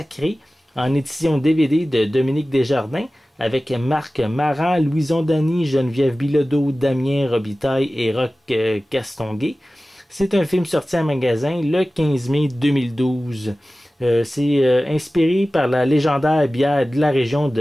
en édition DVD de Dominique Desjardins, avec Marc Maran, Louison Dany, Geneviève Bilodeau, Damien Robitaille et Roch Castonguay. C'est un film sorti en magasin le 15 mai 2012. C'est inspiré par la légendaire bière de la région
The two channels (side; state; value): both; normal; correlation 0.96